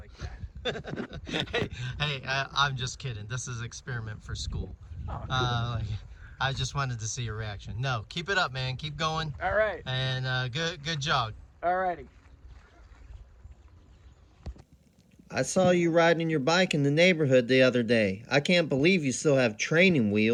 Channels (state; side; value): identical; both; correlation 1.00